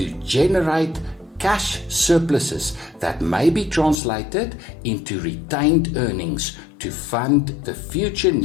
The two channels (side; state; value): right; drops out; at 4.0 s